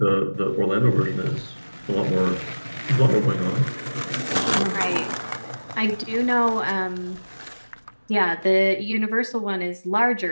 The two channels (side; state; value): both; inverted; correlation -1.00